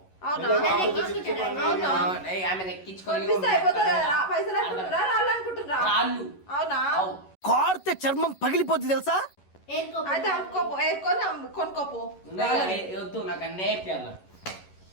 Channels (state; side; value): late; right; 11 ms